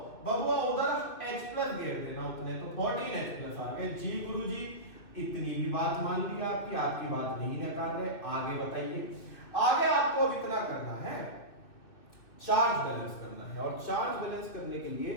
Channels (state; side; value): late; right; 2.6 ms